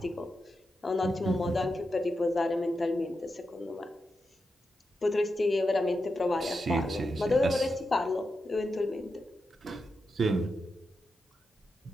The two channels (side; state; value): both; normal; correlation 0.88